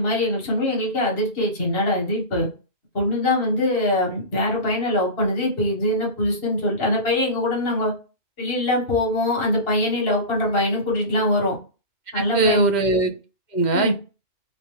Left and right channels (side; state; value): right; late; 2.7 ms